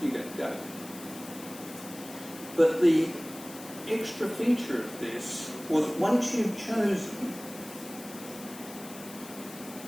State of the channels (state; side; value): noise; left; hiss, 15 dB below the sound